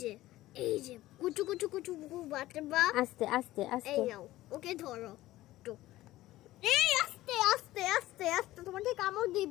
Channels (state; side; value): quieter; right; 16.2 dB